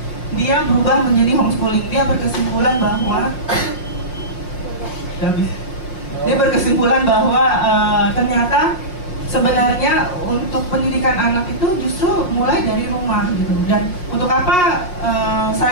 dia berubah menjadi homeschooling. Dia berkesimpulan bahwa ternyata sebenarnya untuk pendidikan anak itu justru mulai dari rumah gitu. Dan untuk apa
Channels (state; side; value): late; right; 5.5 ms